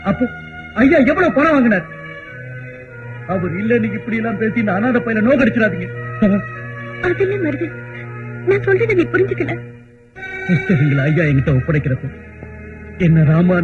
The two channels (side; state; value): both; identical; correlation 1.00